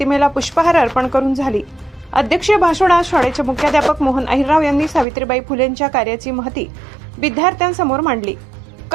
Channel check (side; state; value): left; drops out; at 5.1 s